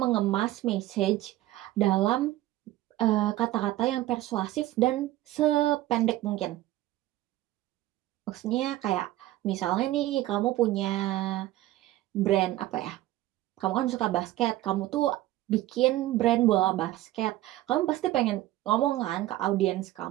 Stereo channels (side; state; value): left; quieter; 15.7 dB